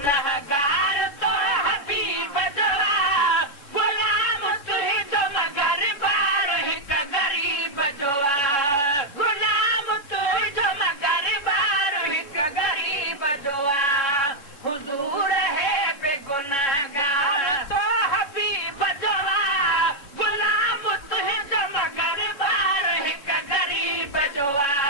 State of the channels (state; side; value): late; right; 3.6 ms